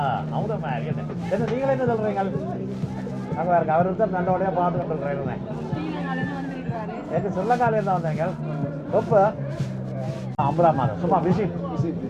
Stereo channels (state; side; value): identical; both; correlation 1.00